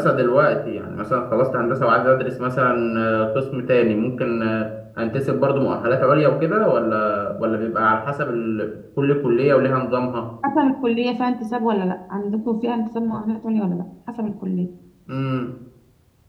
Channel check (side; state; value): both; identical; correlation 1.00